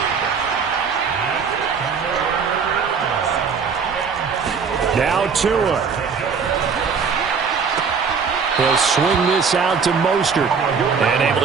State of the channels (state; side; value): quieter; left; 5.8 dB